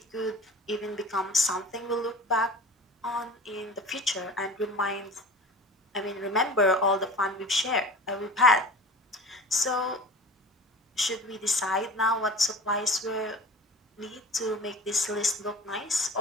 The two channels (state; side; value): normal; both; correlation 0.39